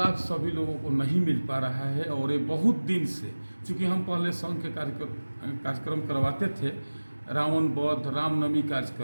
सभी लोगों को नहीं मिल पा रहा है। और ये बहुत दिन से, चूँकि हम पहले संघ के कार्यक्रम करवाते थे, रावण वध, रामनवमी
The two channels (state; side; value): inverted; both; correlation -1.00